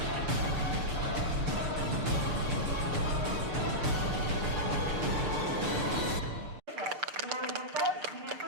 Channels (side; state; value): left; late; 6.7 ms